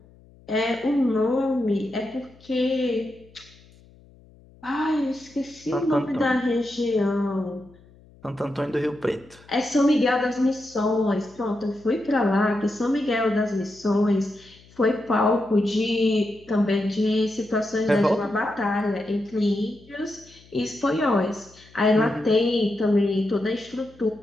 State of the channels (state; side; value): noise; left; hum, 26 dB below the sound